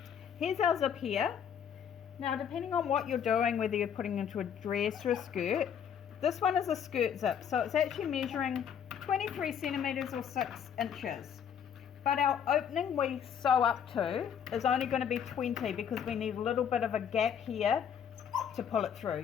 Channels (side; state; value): right; quieter; 8.2 dB